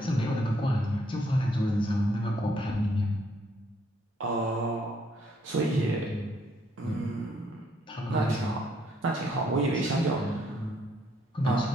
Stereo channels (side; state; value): both; normal; correlation 0.69